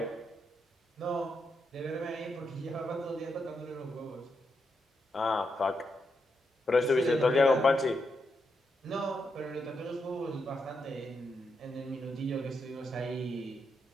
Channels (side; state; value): both; normal; correlation 0.82